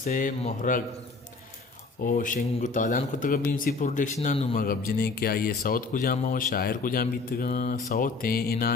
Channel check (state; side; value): quieter; right; 4.1 dB